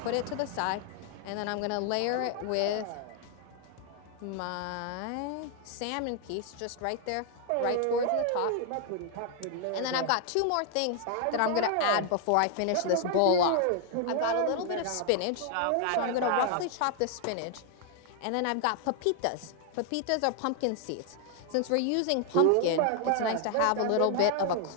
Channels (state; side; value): different; both; correlation 0.00